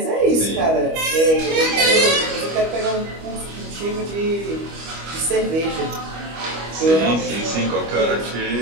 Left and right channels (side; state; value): left; late; 25 ms